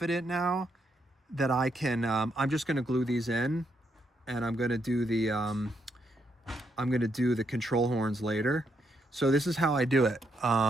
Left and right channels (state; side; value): normal; both; correlation 0.78